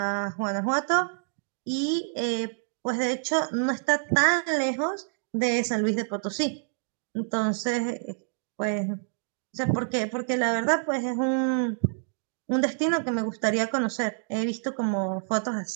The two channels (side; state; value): left; silent; digital silence